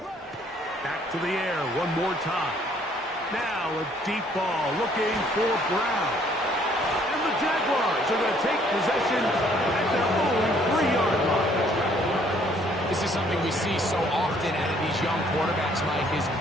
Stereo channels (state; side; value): normal; both; correlation 0.63